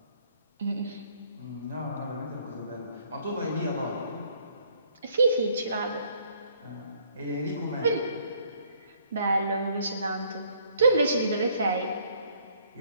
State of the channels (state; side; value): inverted; both; correlation -0.63